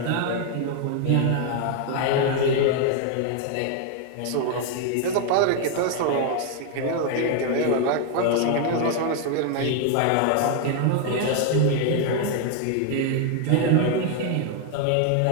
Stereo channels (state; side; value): different; both; correlation 0.00